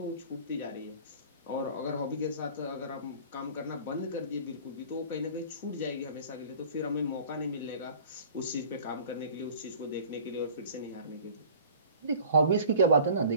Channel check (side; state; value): both; inverted; correlation -0.44